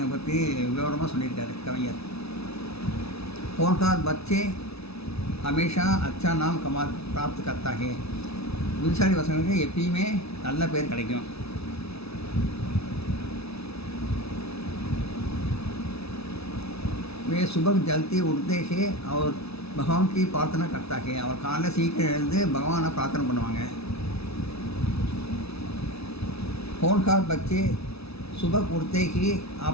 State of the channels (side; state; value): right; late; 0.79 ms